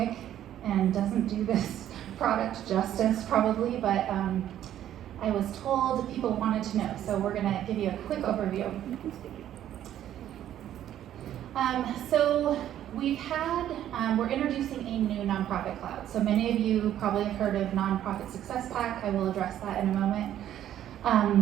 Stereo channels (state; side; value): quieter; left; 11.5 dB